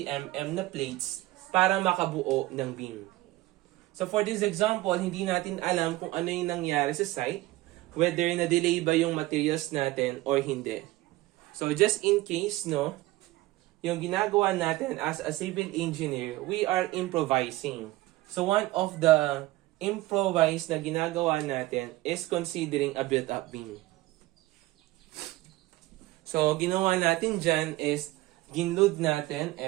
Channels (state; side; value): quieter; left; 18.3 dB